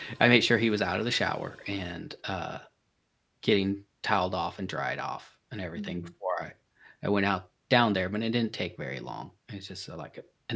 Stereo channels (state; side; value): identical; both; correlation 1.00